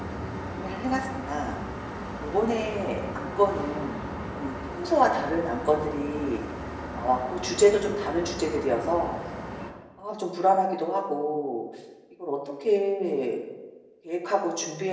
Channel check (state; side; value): identical; both; correlation 1.00